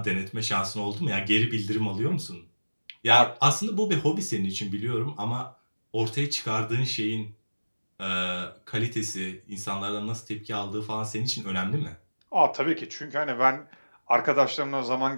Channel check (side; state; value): both; inverted; correlation -1.00